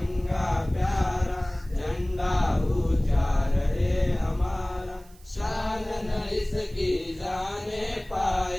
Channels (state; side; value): noise; right; hiss, 27 dB below the sound